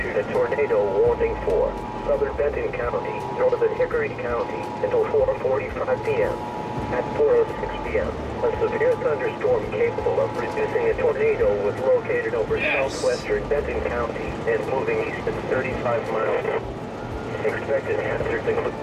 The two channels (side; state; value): both; identical; correlation 1.00